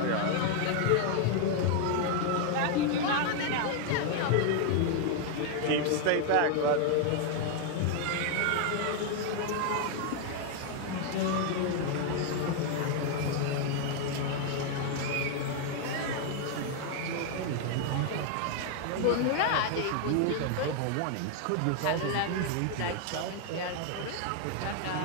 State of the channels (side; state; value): both; different; correlation 0.00